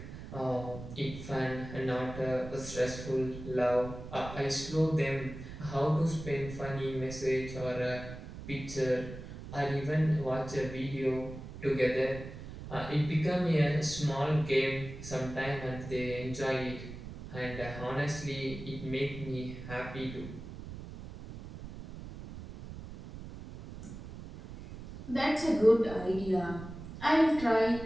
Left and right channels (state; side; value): noise; right; rumble, 12 dB below the sound